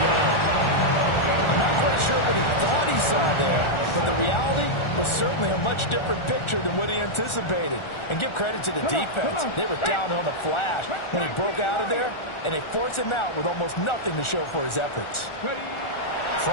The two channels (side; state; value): right; late; 1.4 ms